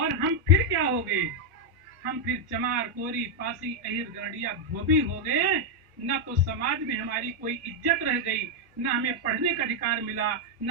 हम फिर क्या हो गए? हम फिर चमार, कोरी, पासी, अहिर, गरडिया, धोबी हो गए। न तो समाज में हमारी कोई इज्जत रह गई, न हमें पढ़ने का अधिकार मिला, न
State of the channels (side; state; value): both; normal; correlation 0.00